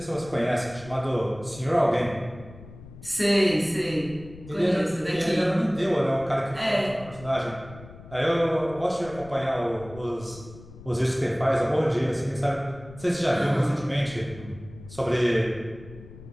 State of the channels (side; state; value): left; noise; rumble, 18 dB below the sound